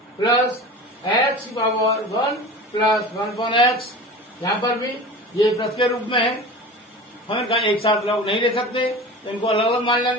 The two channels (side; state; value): both; normal; correlation 0.35